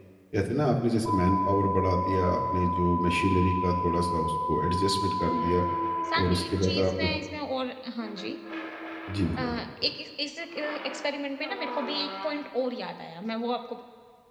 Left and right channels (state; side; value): identical; both; correlation 1.00